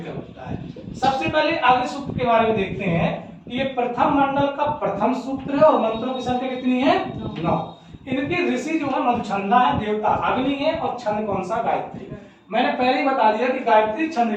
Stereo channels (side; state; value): both; identical; correlation 1.00